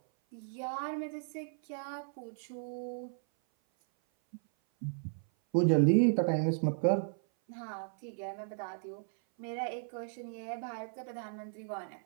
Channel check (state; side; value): silent; left; 54 dB below the other